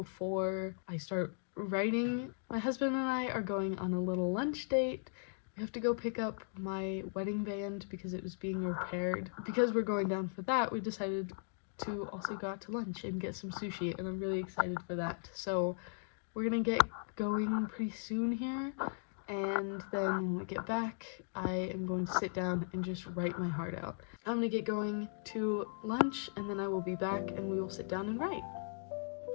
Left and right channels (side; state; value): right; silent; digital silence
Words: I start writing. My husband and I are going on a little lunch date. We have to go pick up my wedding band because it was being repaired. Because we're going down for that, we decided to also go out to lunch and get some sushi, and I'm really excited for that. So we're gonna get going pretty soon here, and then when we get back, I am going to sit down and just write my heart out. I'm gonna get going to lunch, and then I will be back and we will sit down and write.